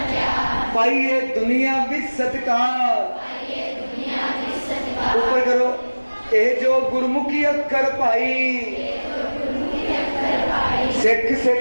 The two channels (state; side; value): inverted; both; correlation -1.00